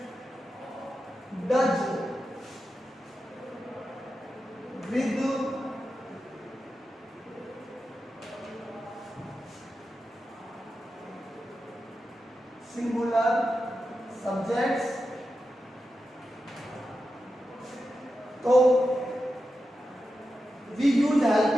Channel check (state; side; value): normal; both; correlation 0.90